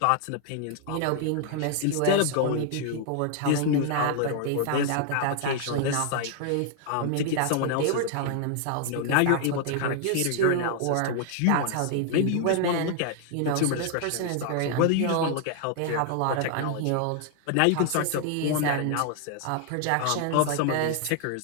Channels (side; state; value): both; different; correlation 0.00